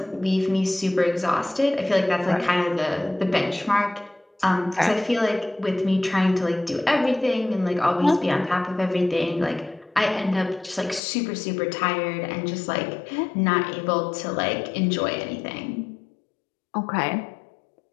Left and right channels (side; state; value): right; drops out; at 11.0 s